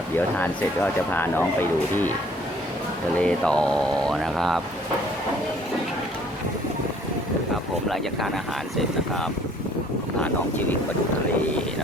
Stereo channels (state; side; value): normal; both; correlation 0.58